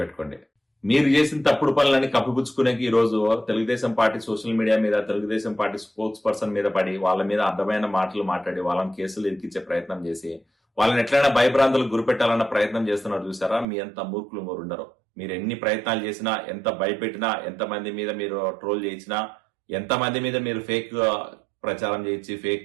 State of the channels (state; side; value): drops out; left; at 13.7 s